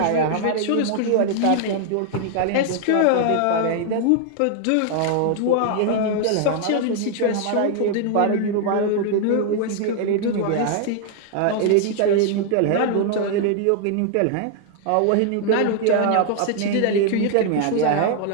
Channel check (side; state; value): both; different; correlation 0.00